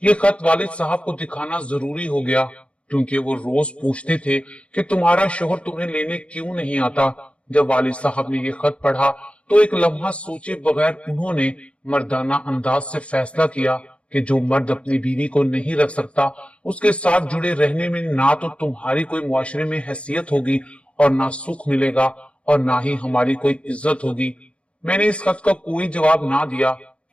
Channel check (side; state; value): right; late; 0.061 ms